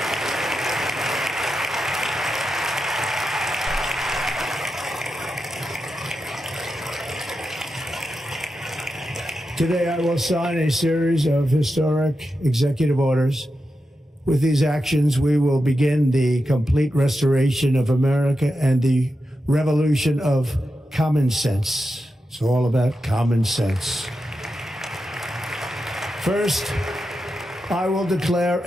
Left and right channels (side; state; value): both; normal; correlation 0.89